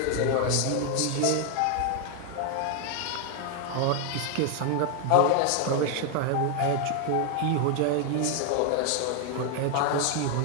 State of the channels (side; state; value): both; different; correlation 0.00